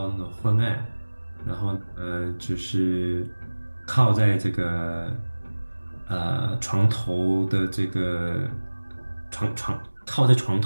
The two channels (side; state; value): both; inverted; correlation -1.00